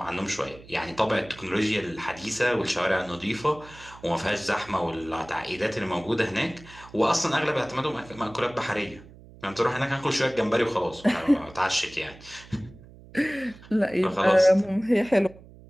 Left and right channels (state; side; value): noise; right; hum, 21 dB below the sound